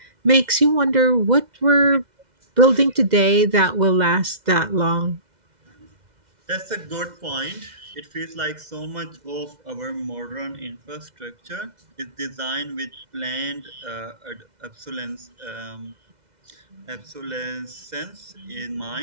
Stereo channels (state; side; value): late; left; 2.0 ms